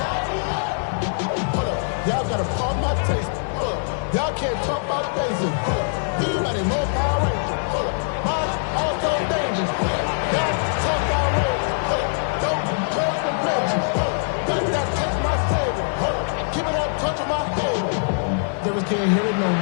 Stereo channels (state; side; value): silent; right; digital silence